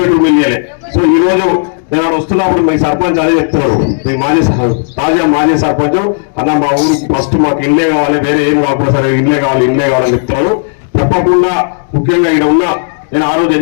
ఇల్లు ఇవ్వలే. సో ఈ రోజు నేను వస్తున్నప్పుడు మీ సర్పంచ్ అదే చెప్తున్నారు, మీ తాజా మాజీ సర్పంచ్ అన్న మా ఊరికి ఫస్ట్ మాకు ఇల్లే కావాలి, వేరే ఏం కాకపోతే సరే ఇల్లే కావాలని చెప్తున్నారు. తప్పకుండా ముఖ్యంగా ఇక్కడ ఉన్న నేను ఆ రోజు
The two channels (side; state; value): right; silent; digital silence